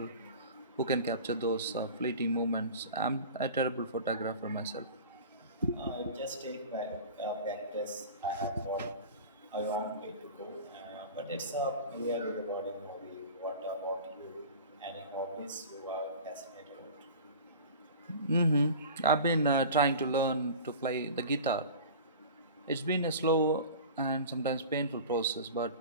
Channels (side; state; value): both; inverted; correlation -0.37